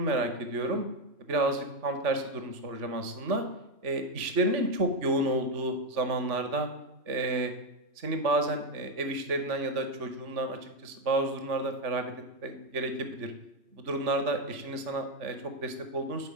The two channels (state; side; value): late; left; 3.4 ms